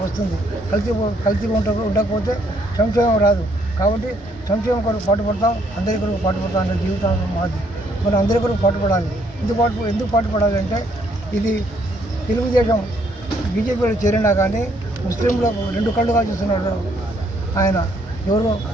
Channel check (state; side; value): normal; both; correlation 0.69